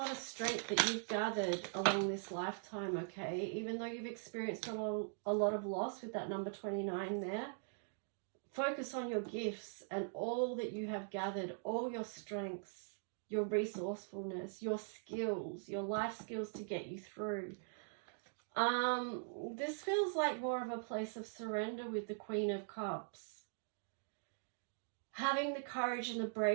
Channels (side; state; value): left; silent; digital silence